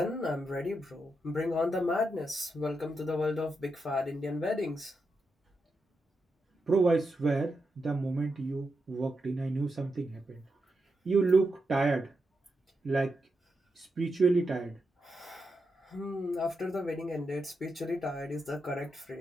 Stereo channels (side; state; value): both; normal; correlation 0.85